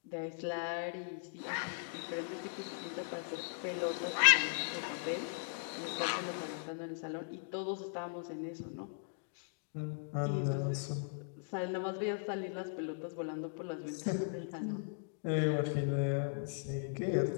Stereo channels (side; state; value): right; silent; digital silence